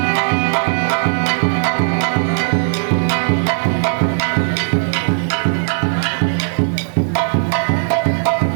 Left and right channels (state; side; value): silent; left; 68 dB below the other